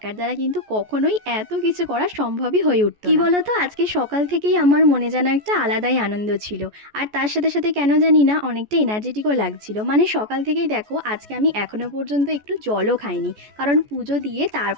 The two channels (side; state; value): left; late; 14 ms